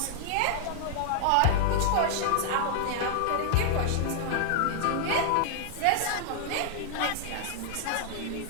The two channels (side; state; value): both; different; correlation -0.01